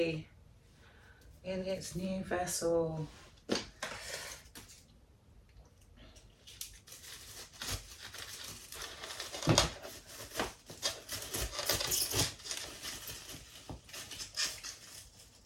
in its new vessel.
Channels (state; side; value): identical; both; correlation 1.00